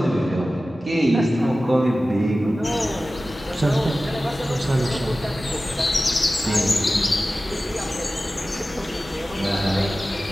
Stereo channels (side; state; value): both; normal; correlation 0.95